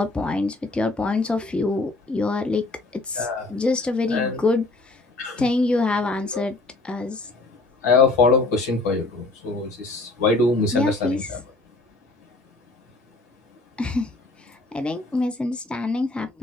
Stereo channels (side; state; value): right; quieter; 3.1 dB